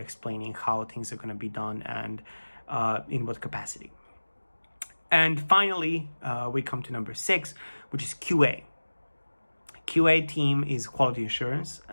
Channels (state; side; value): inverted; both; correlation -1.00